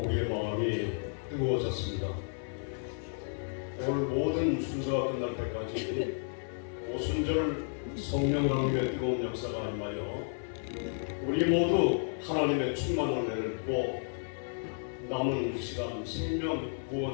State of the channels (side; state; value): right; silent; digital silence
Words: 우리의 마음이 뜨거워졌습니다. 오늘 모든 순서가 끝날 때까지 오순절 성령 하나님의 뜨거운 역사가 임하여 우리 모두 하나님의 충만한 은혜를 받고 남은 시간 생명